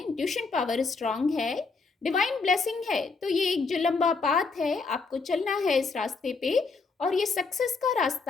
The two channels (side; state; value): right; quieter; 4.4 dB